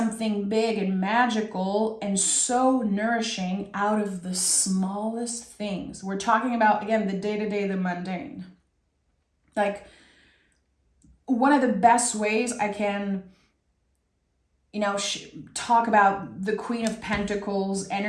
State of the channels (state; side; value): identical; both; correlation 1.00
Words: big and magical and so nourishing out of the smallest things. We're talking about, again, the day-to-day, the mundane. Like, one of the best ways I can, talk about the Queen of Pentacles